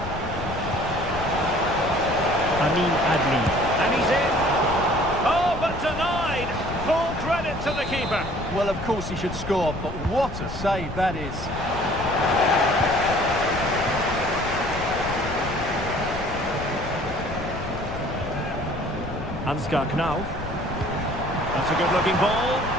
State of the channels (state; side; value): noise; left; rumble, 11 dB below the sound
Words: Amin Adli. And he's in. Oh, but denied. Full credit to the keeper. Well, of course he should score, but what a save that is. Ansgar Knauf. That's a good-looking ball.